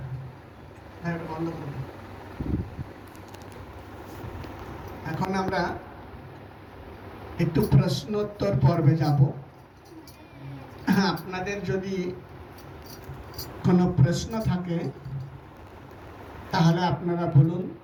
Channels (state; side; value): identical; both; correlation 1.00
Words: বন্ধ করব। এখন আমরা একটু প্রশ্নোত্তর পর্বে যাব। আপনাদের যদি কোনো প্রশ্ন থাকে তাহলে আপনারা বলুন,